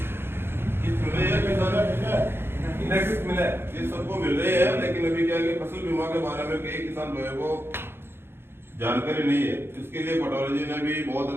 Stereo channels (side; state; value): left; late; 0.11 ms